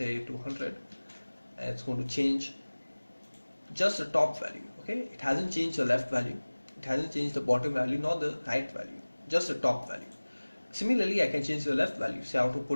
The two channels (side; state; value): both; inverted; correlation -1.00